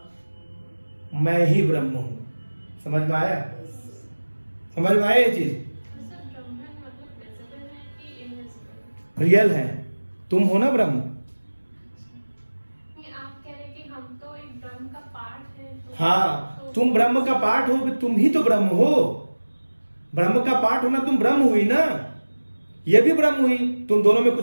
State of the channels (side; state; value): both; inverted; correlation -1.00